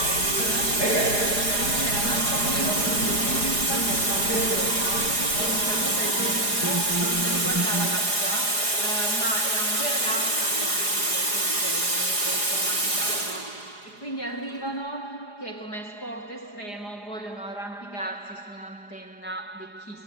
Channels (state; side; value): late; right; 4.9 ms